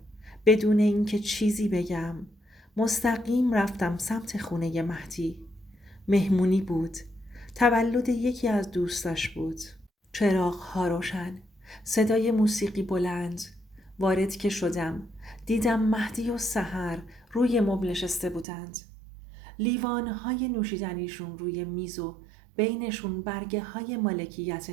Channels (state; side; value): drops out; left; at 18.4 s